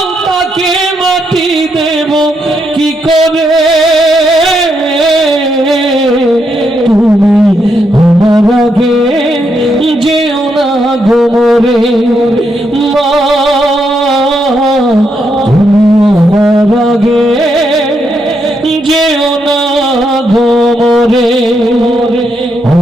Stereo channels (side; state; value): both; normal; correlation 0.80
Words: তাকে মাটি দেব কি করে। তুমি আমার আগে যেও না গোরে মা, আমার আগে যেও না গোরে।